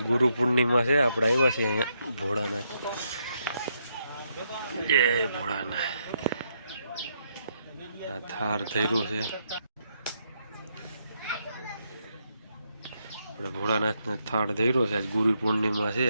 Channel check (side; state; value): both; inverted; correlation -0.78